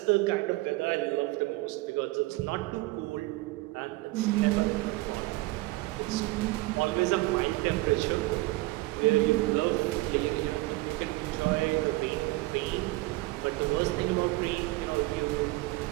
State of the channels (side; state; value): left; quieter; 20.5 dB